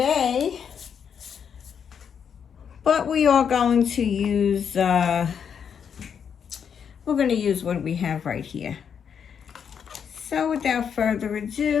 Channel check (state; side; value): quieter; right; 7.4 dB